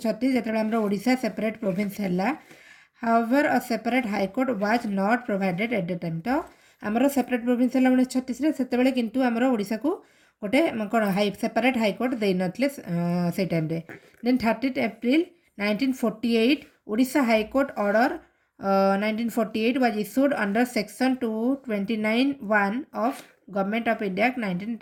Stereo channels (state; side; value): identical; both; correlation 1.00